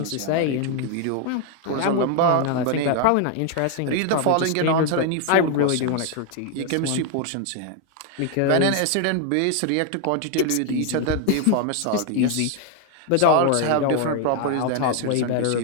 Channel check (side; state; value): both; different; correlation 0.00